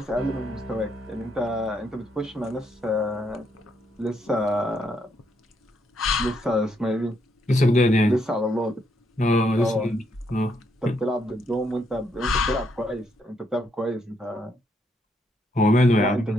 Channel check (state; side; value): normal; both; correlation 0.75